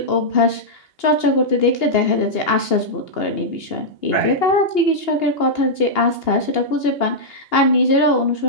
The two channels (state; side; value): late; right; 2.8 ms